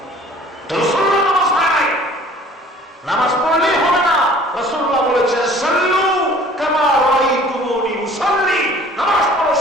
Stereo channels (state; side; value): normal; both; correlation 0.50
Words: রাসূলুল্লাহ নামাজ হয় নাই। নামাজ পড়লেই হবে না, রাসূলুল্লাহ বলেছেন, সাল্লু কামা রাআইতুমুনি উসাল্লি, নামাজ পড়ো